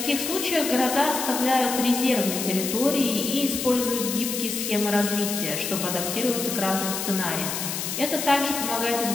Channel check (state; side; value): noise; left; hiss, 4 dB below the sound